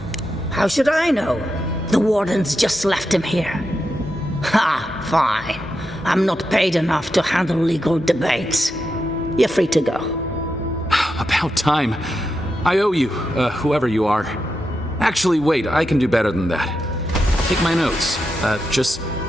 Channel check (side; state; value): both; normal; correlation 0.87